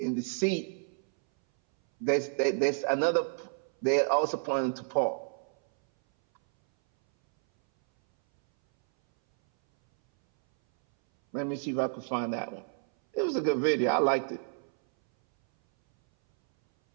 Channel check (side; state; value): left; silent; 58 dB below the other